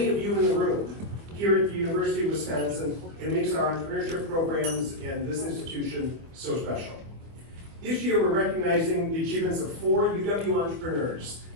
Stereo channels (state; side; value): late; left; 25 ms